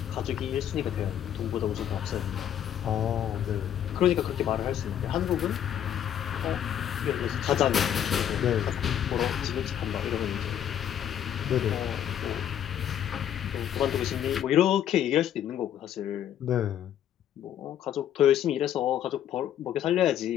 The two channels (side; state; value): right; quieter; 10.1 dB